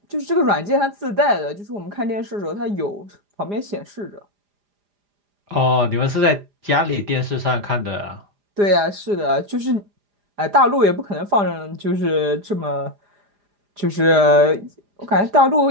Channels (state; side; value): late; left; 4.9 ms